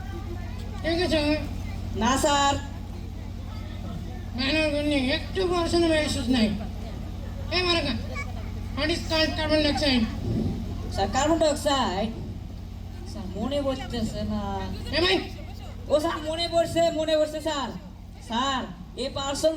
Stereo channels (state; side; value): identical; both; correlation 1.00